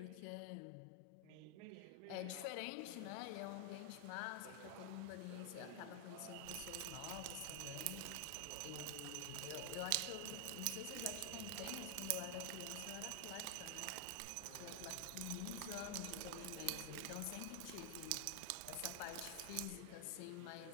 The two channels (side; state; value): both; different; correlation 0.00